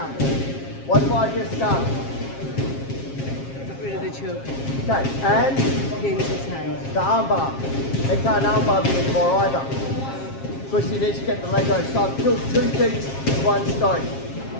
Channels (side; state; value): right; late; 7.4 ms